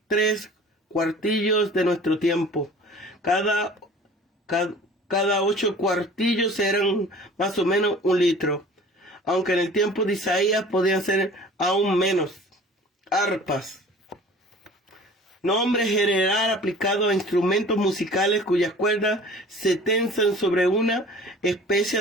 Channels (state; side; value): normal; both; correlation 0.45